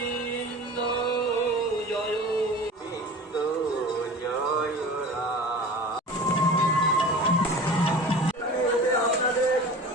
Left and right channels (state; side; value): normal; both; correlation 0.38